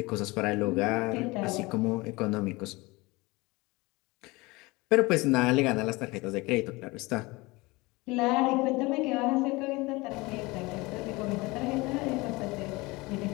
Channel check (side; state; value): right; quieter; 23.2 dB